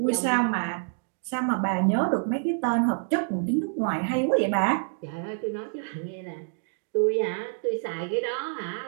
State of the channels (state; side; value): silent; left; digital silence